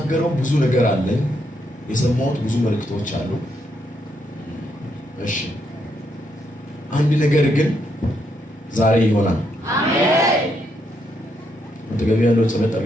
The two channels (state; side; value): normal; both; correlation 0.77